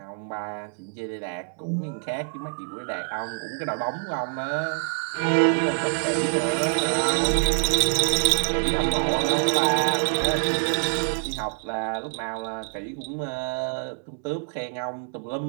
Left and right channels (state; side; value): silent; left; digital silence